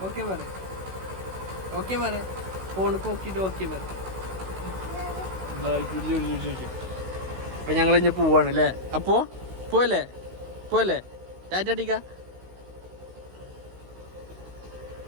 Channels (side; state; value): left; late; 16 ms